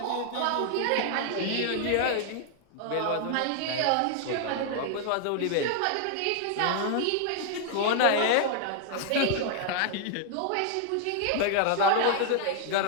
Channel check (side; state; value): both; different; correlation 0.00